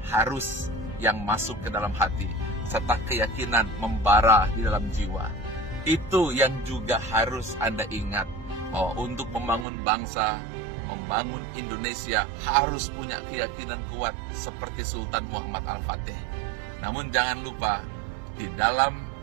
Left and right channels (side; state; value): left; drops out; at 9.7 s